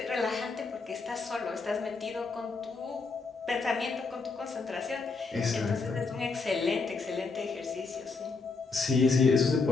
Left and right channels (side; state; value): right; quieter; 4.2 dB